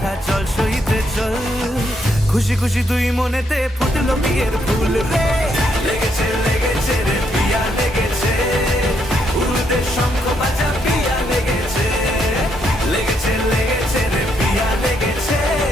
চল সইতে চল, খুশি খুশি দুই মনেতে ফুটলো বিয়ের ফুল রে, লেগেছে লেগেছে রে পিয়া লেগেছে, উড়তে শঙ্খ বাজা পিয়া লেগেছে, লেগেছে লেগেছে রে পিয়া লেগেছে,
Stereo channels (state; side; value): normal; both; correlation 0.75